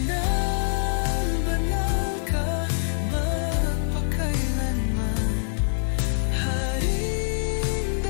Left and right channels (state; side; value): silent; right; 62 dB below the other